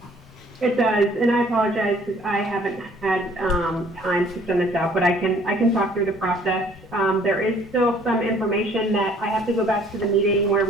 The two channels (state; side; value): normal; both; correlation 0.58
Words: It does, and I apologize because I haven't had time to send this out, but I can talk through the process. There is still some information that I have to go back to the meeting where